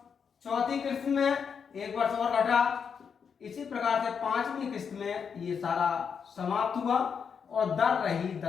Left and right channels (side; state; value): right; quieter; 6.6 dB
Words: चौथी किस्त में 1 वर्ष और घटा। इसी प्रकार से 5वीं किस्त में ये सारा समाप्त हुआ और दर रही